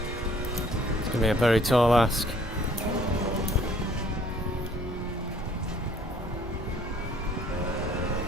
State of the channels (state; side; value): normal; both; correlation 0.58